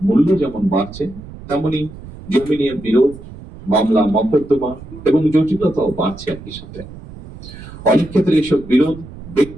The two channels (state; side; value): noise; right; rumble, 15 dB below the sound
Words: মূল্য যেমন বাড়ছে, তেমনি জমি নিয়ে বিরোধ, মামলা মকদ্দমা এবং জটিলতাও বাড়ছে একই সাথে। অনেক ক্ষেত্রে এসব বিরোধ